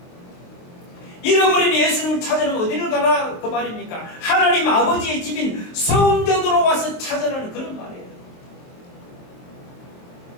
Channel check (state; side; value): late; right; 22 ms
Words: 잃어버린 예수님을 찾으려면 어디를 가라 그 말입니까? 하나님 아버지의 집인 성전으로 와서 찾으라는 그런 말이에요.